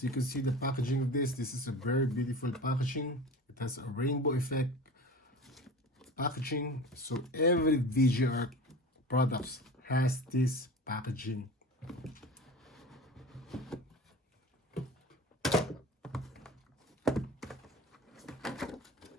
you can see the packaging of this is a very beautiful packaging. It has a rainbow effect packaging. So every VGR products has this packaging.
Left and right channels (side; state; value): both; normal; correlation 0.35